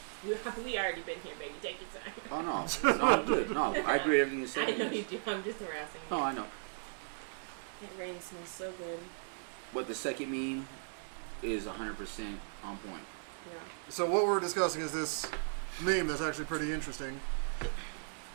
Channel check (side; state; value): left; silent; digital silence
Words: We already been here, baby. Take your time. Oh no, no, I'm good. No, I agree with everything you said. I know you do. I'm just harassing you. No, I know. It rain smells so good. But the second meme is 100% on point. Yeah. So what we're discussing is this meme that's actually pretty interesting,